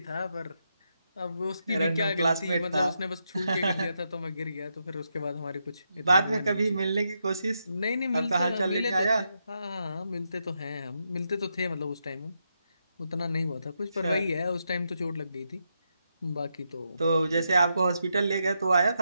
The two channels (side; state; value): both; inverted; correlation -0.83